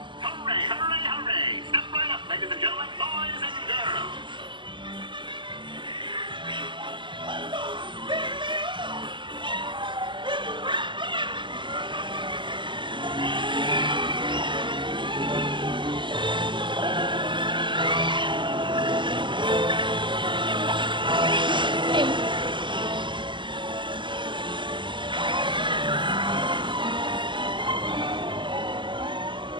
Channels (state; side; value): late; left; 0.24 ms